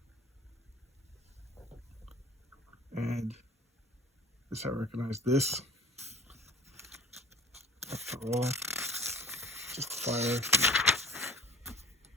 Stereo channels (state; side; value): normal; both; correlation 0.44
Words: And this, I recognize this. After all, just fire.